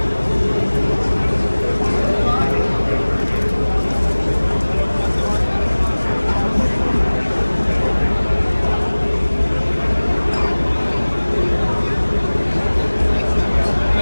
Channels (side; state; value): both; inverted; correlation -1.00